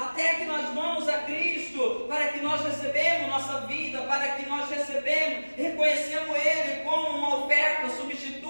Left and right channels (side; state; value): both; inverted; correlation -1.00